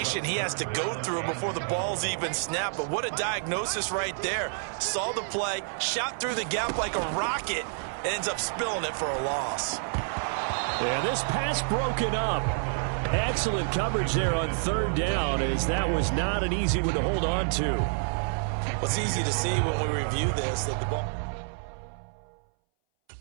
he has to go through before the ball's even snapped. But what a diagnosis right there. Saw the play, shot through the gap like a rocket, ends up spilling it for a loss. And this pass broken up. Excellent coverage there on 3rd down, as that was not an easy one to hold on to. What's easy to see when we review this, that the ball...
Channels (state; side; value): silent; left; 59 dB below the other